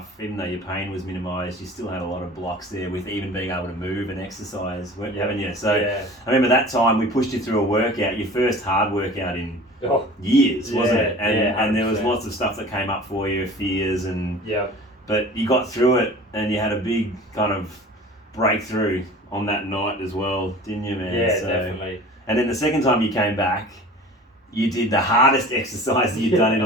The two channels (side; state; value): both; normal; correlation 0.42